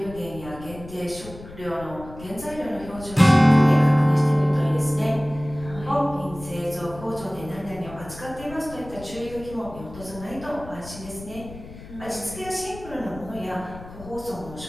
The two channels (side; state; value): left; noise; rumble, 15 dB below the sound